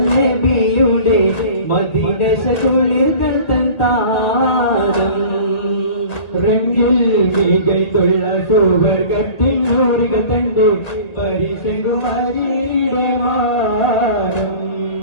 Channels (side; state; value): right; late; 2.0 ms